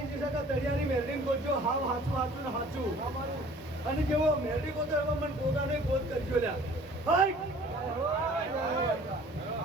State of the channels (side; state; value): both; normal; correlation 0.51